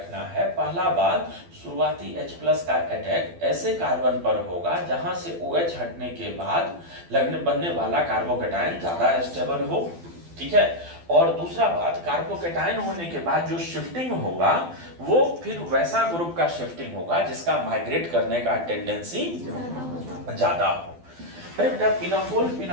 है। पहला बात, शुरुआती H+ का अटैक ऐसे कार्बन पर होगा जहां से OH हटने के बाद बनने वाला कार्बोकेटाइन ज्यादा स्टेबल हो। ठीक है, और दूसरा बात, कार्बोकेटाइन होने के बाद जो शिफ्टिंग होगा वो फिर वैसा ग्रुप का शिफ्टिंग होगा जिसका माइग्रेट करने का टेंडेंसी ज्यादा हो। अरे बेटा, पिनाकोल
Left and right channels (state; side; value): late; left; 12 ms